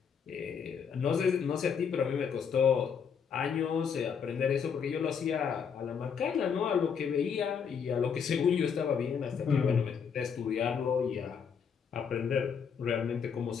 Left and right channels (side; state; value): right; quieter; 6.8 dB